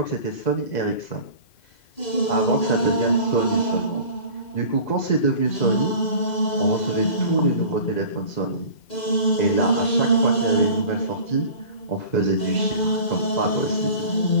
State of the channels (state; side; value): late; right; 2.0 ms